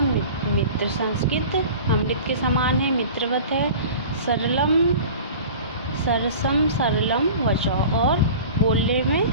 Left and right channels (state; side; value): inverted; both; correlation -0.39